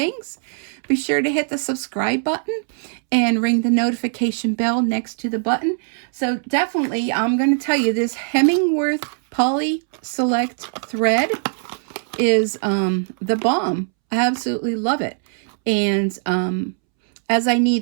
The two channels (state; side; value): silent; left; 65 dB below the other